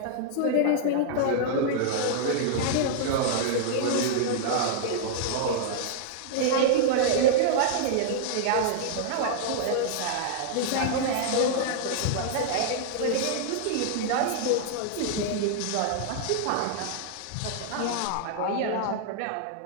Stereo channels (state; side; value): different; both; correlation -0.01